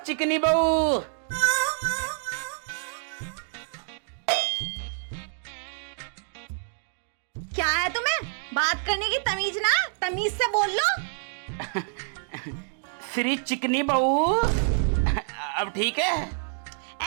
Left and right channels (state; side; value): silent; left; 60 dB below the other